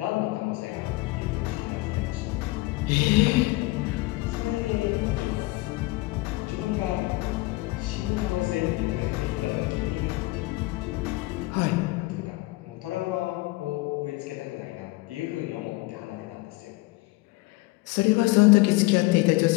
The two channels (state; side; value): quieter; right; 21.4 dB